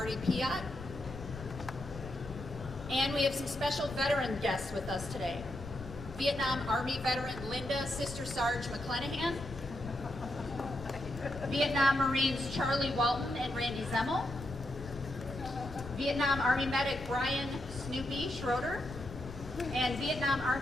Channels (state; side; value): noise; left; rumble, 12 dB below the sound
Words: Piat, and we have some special veteran guests with us today. Vietnam Army veteran Linda Sister Sarge McClenahan, Vietnam Marines Charlie Walton and Randy Zemmel, Vietnam Army medic Brian Snoopy Schroeder, and Vietnam